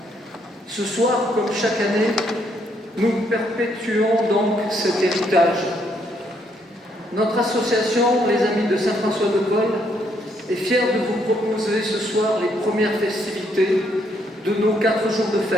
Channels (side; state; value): both; normal; correlation 0.72